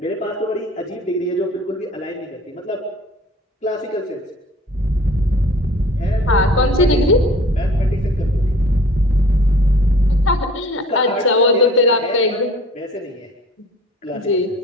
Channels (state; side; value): normal; both; correlation 0.48